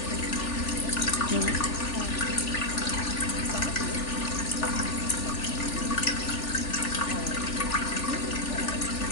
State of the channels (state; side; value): late; right; 3.4 ms